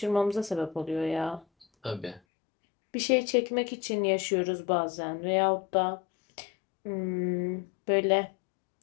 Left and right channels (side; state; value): right; drops out; at 2.2 s